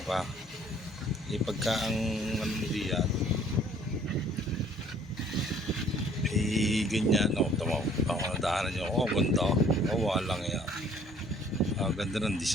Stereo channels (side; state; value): both; normal; correlation 0.57